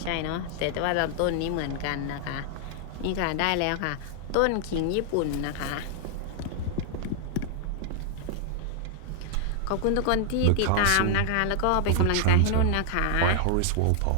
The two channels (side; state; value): both; different; correlation 0.00